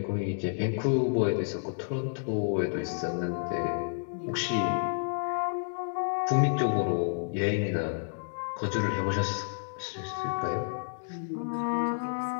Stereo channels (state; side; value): silent; right; digital silence